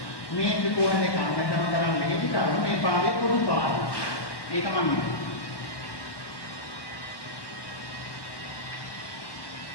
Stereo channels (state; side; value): late; right; 1.1 ms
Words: මේ ත්‍රිකෝණ දෙක අමතන කරන් මෙහෙදි කරුණ මේ පාදේ පොදු පාදය. ඒක මම